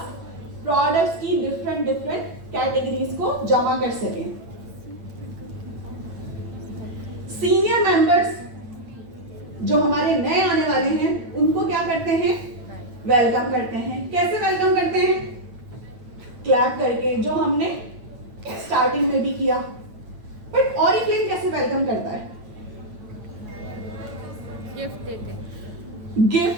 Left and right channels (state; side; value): late; left; 8.9 ms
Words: प्रोडक्ट्स की डिफरेंट कैटेगरीज को जमा कर सकें। सीनियर मेंबर्स जो हमारे नए आने वाले हैं उनको क्या करते हैं? वेलकम करते हैं। कैसे वेलकम करते हैं? क्लैप करके, जो हमने स्टार्टिंग में भी किया। बट ऑरिफ्लेम कैसे वेलकम करता है?